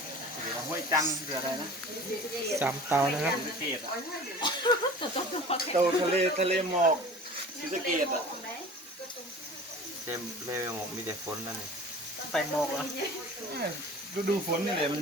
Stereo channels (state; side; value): normal; both; correlation 0.41